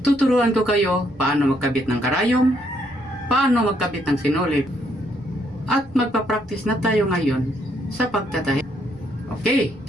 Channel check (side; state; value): right; noise; rumble, 25 dB below the sound